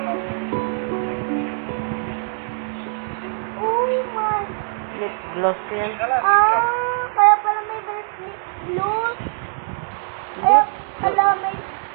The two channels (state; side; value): silent; left; 64 dB below the other